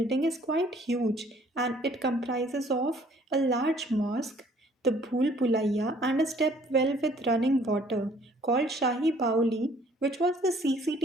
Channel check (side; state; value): both; normal; correlation 0.59